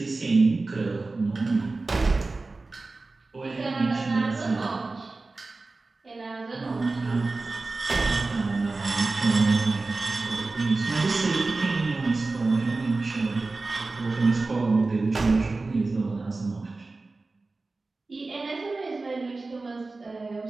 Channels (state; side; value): quieter; left; 3.5 dB